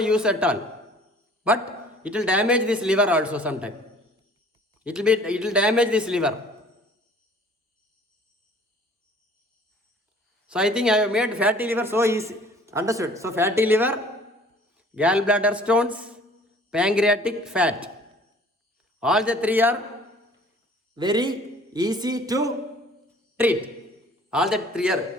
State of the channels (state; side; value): normal; both; correlation 0.52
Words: at all. But it will damage this liver also sometime. It will damage this liver. So I think I have made fatty liver so easy. Understood? So fatty liver, gallbladder stones, pancreatic fat. All the three are very easy to treat. All the three